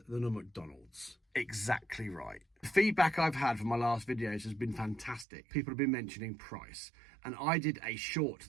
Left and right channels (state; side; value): drops out; left; at 5.2 s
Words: than a McDonald's. Exactly right. The feedback I've had from my last videos has been fantastic. People have been mentioning price. And I did a short